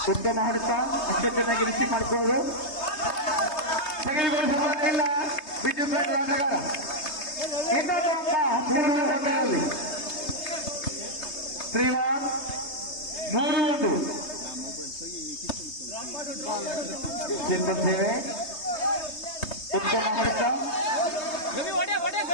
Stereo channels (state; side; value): late; right; 3.2 ms